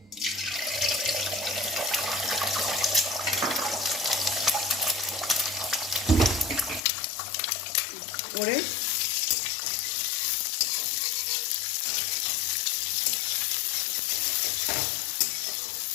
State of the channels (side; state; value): right; drops out; at 6.9 s